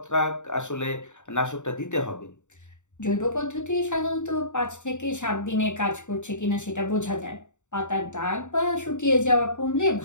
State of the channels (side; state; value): right; late; 0.84 ms